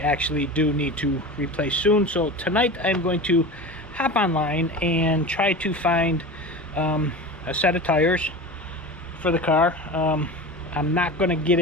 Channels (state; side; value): normal; both; correlation 0.31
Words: do need to replace soon. So tonight I'm going to hop online and try to find a set of tires for the car. I'm not going to get